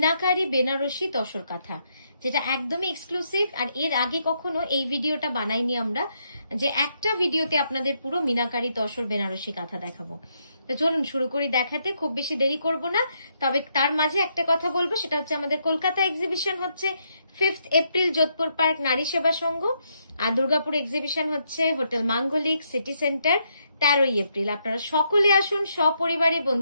বেনারসি তসর কাঁথা, যেটা একদমই এক্সক্লুসিভ। আর এর আগে কখনো এই ভিডিওটা বানাইনি আমরা, যে একটা ভিডিওতে আপনাদের পুরো মিনাকারি তসর বেনারসি কাঁথা দেখাবো। তো চলুন শুরু করি দেখাতে, খুব বেশি দেরি করব না। তবে তার মাঝে একটা কথা বলবো, সেটা হচ্ছে আমাদের কলকাতা এক্সিবিশন হচ্ছে 5 এপ্রিল যোধপুর পার্ক নারী সেবা সংঘ, আর দুর্গাপুর এক্সিবিশন হচ্ছে হোটেল মাঙ্গলিক সিটি সেন্টার 13 এপ্রিল। আপনারা সকলে আসুন সপরিবারে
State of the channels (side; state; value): both; inverted; correlation -0.77